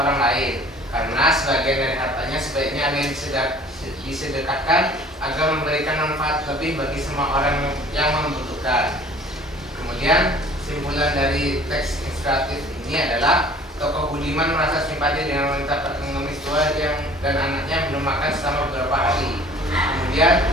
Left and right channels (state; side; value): normal; both; correlation 0.50